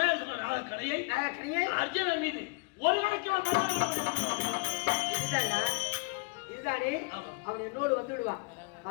நாக கணையை அர்ஜுனன் மீது ஒரு இதுதானே அவன் என்னோடு வந்து விடுவான்.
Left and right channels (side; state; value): right; quieter; 29.9 dB